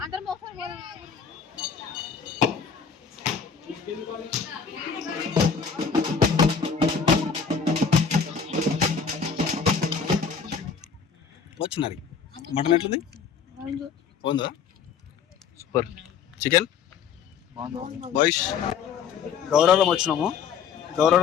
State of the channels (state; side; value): quieter; right; 6.5 dB